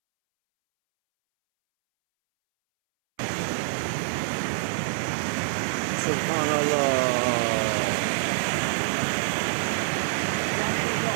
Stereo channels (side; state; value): left; silent; 61 dB below the other